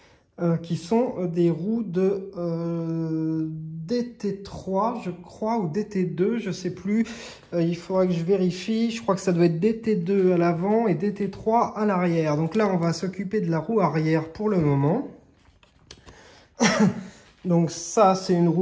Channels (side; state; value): both; identical; correlation 1.00